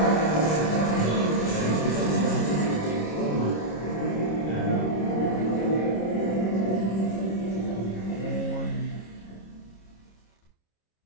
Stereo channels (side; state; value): right; late; 26 ms